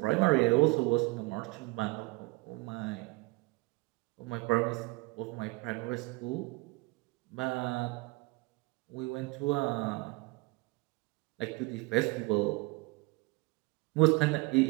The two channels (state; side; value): quieter; left; 24.5 dB